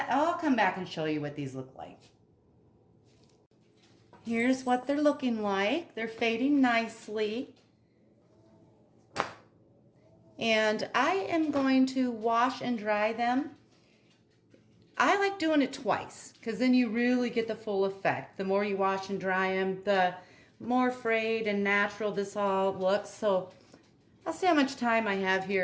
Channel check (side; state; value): both; identical; correlation 1.00